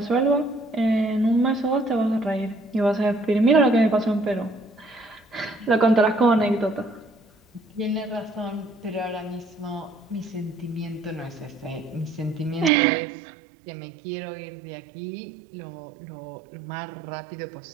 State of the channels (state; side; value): drops out; left; at 12.7 s